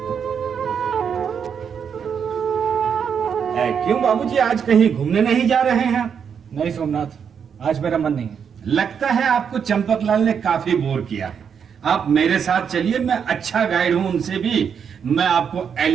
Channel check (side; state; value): left; quieter; 7.2 dB